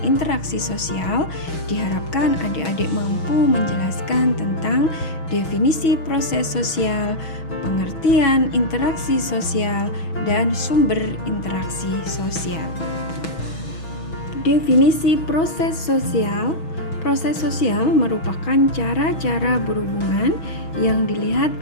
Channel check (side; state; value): right; late; 6.2 ms